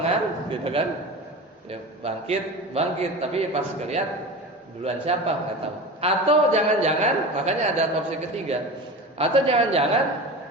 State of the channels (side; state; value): both; normal; correlation 0.30